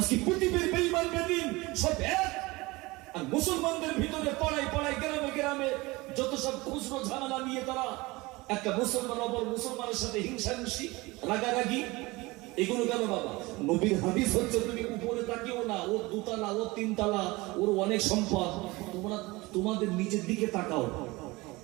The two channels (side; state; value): left; quieter; 22.3 dB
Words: পৃথিবীর বেঈমান বেদিন সব এক, আর মুসলমানদের ভিতরে পাড়ায় গ্রামে গ্রামে যত সব খুচরো ঝামেলা নিয়ে তারা একটা মুসলমান অপর মুসলমানের সাথে হিংসাহিংসি, রাগারাগি, এগুলো কেন বাবা? নবীর হাদিস হচ্ছে তুমি উপরে তাকিও না, ওর দুতলা, ওর তিনতলা, ওর অনেক সম্পদ। তোমরা তোমাদের নিচের দিকে তাকাও।